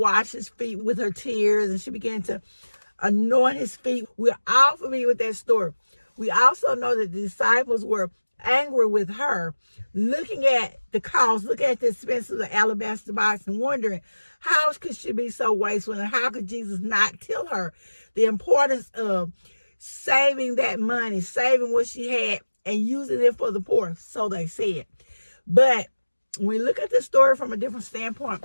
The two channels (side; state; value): both; inverted; correlation -1.00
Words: his feet with her tears. And she began to anoint his feet. We're all familiar with that story. We also know that the disciples were angry with her, looking at the cost, looking at the expense of the alabaster box and wondering how could she be so wasteful and how could Jesus not tell her the importance of saving that money, saving what she had and using it for the poor, so they said. But when we look at the story from a different standpoint,